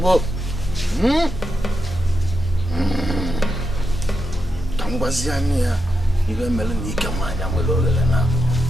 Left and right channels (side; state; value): both; normal; correlation 0.86